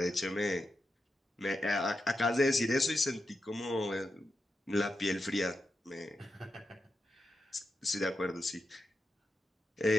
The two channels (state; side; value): normal; both; correlation 0.88